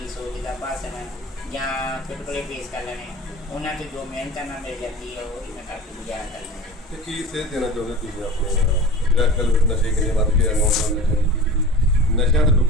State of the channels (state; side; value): normal; both; correlation 0.35